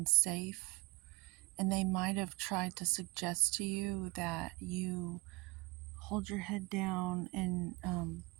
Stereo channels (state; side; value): quieter; left; 23.3 dB